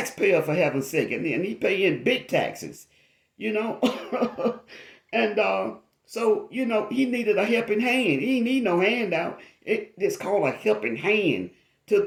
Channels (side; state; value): both; identical; correlation 1.00